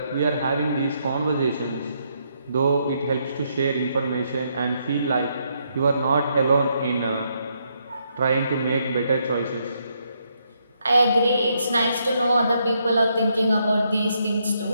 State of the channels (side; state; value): both; inverted; correlation -0.76